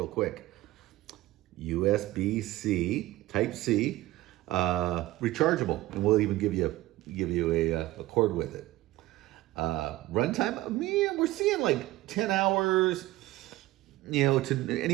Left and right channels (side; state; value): left; quieter; 17.2 dB